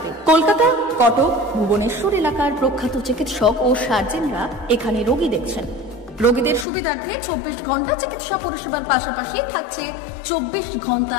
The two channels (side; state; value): right; drops out; at 6.7 s